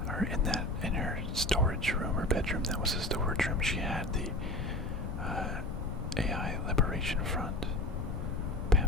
or in her storage room or bedroom. That was a storage room. She had the AI Liberation Front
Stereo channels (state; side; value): noise; left; rumble, 4 dB below the sound